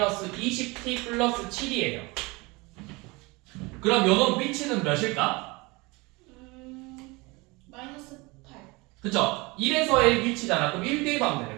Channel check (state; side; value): quieter; left; 25.0 dB